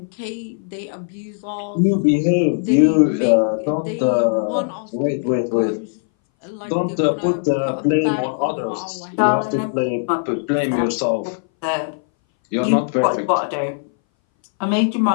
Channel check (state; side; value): silent; right; 61 dB below the other